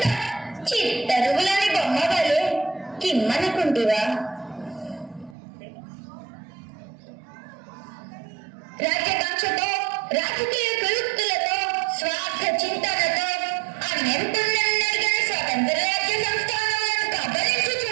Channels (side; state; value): left; drops out; at 5.4 s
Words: చిత్తరువులని బొమ్మవలు కిమ్మనుకుంటివా? రాజ్యకాంక్షతో రాజకీయ ప్రయుక్తులతో స్వార్థ చింతనతో అన్యంతున్నెరుగని స్వతంత్ర రాజ్య సంస్థానాలను